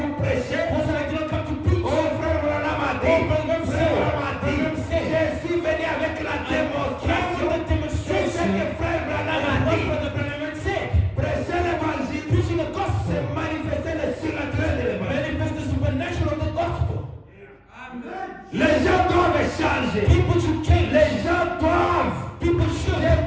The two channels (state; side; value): identical; both; correlation 1.00